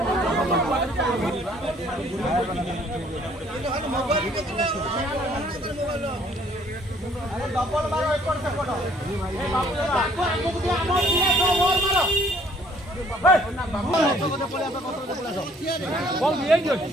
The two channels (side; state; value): both; normal; correlation 0.60